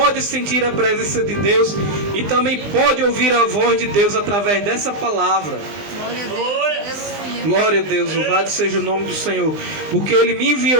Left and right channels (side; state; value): left; late; 20 ms